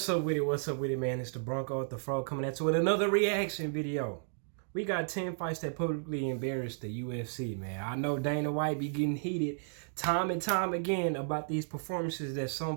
up with it? What's up with it, man? It's the Bronco at the Fro coming at you with another reaction video. We got 10 fights that publicly embarrassed the UFC, man. I know Dana White be getting heated time and time again about these performances that some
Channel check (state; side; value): silent; left; digital silence